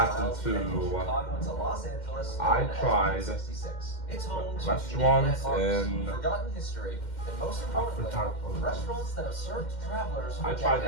to I tried restaurants and forgotten history, and most importantly, restaurants that have served travelers. I tried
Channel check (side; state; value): right; late; 2.1 ms